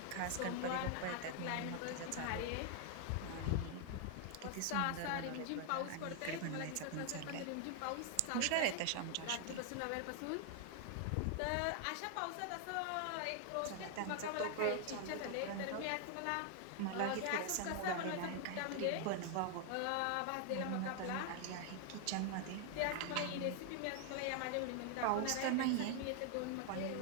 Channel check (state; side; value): different; both; correlation 0.00